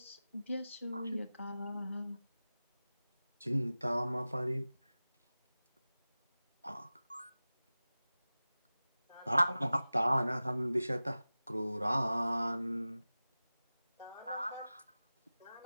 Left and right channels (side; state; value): both; inverted; correlation -0.97